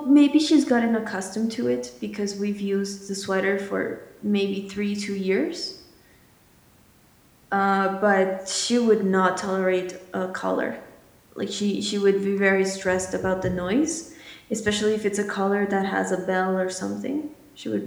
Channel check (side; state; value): both; identical; correlation 1.00